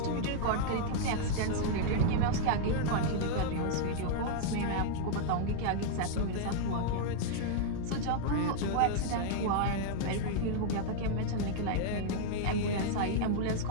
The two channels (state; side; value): different; both; correlation -0.01